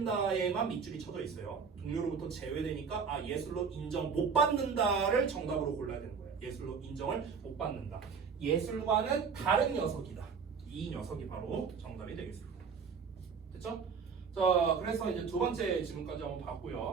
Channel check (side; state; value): left; quieter; 5.9 dB